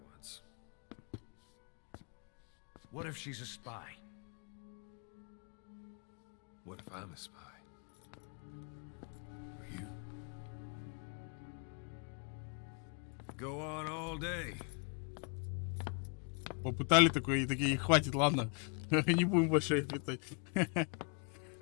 once. What if she's a spy? What if I'm a spy? Or you? Go on all day. Попытали такое, и такие, хватит, ладно. Не будем больше их летать.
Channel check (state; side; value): quieter; right; 37.3 dB